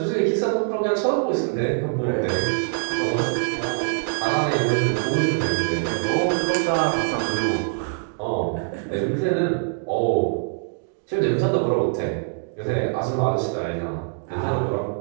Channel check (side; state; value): left; silent; digital silence